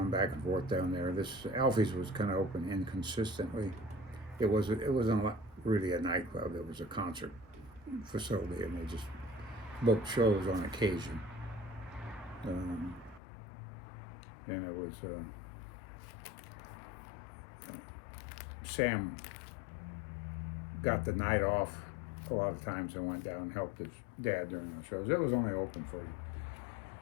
back and forth down there. This Alfie's was kind of open inconsistently. It wasn't really a nightclub. It was a concert facility, and they just booked shows on occasion. And it was Sam got the night off a lot of times and went down and helped his dad during the shows. It was only open for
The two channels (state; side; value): drops out; right; at 13.2 s